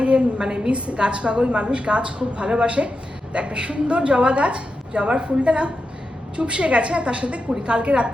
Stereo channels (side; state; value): both; normal; correlation 0.89